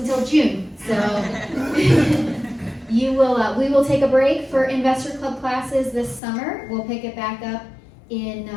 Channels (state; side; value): drops out; right; at 6.2 s